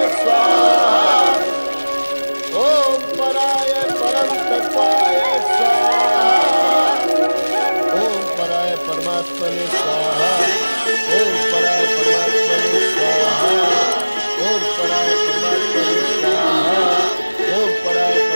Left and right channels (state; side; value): inverted; both; correlation -1.00